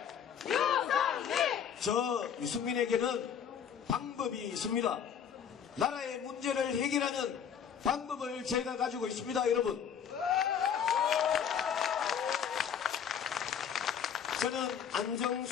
저 유승민에게는 방법이 있습니다. 나라의 문제를 해결하는 방법을 제가 가지고 있습니다, 여러분. 저는 안정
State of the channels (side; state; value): right; quieter; 8.0 dB